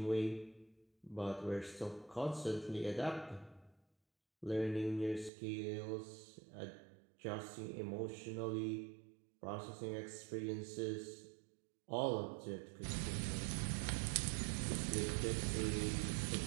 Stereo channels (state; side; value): drops out; left; at 5.3 s